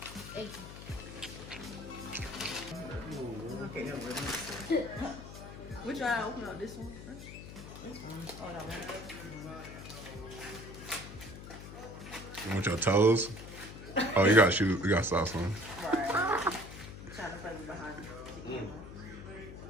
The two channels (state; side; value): noise; left; hum, 12 dB below the sound